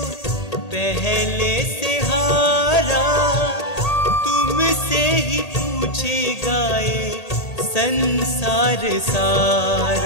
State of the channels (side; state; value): right; late; 1.8 ms